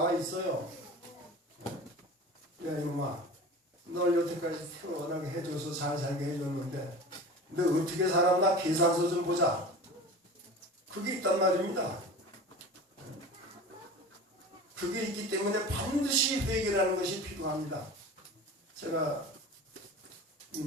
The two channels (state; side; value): normal; both; correlation 0.35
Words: 있어요. 야 이놈아, 널 여태까지 태어나게 해줘서 잘 살게 해줬는데 너 어떻게 살았나 계산서 좀 보자. 그게 있단 말입니다. 그게 있기 때문에 반드시 회개라는 것이 필요합니다. 제가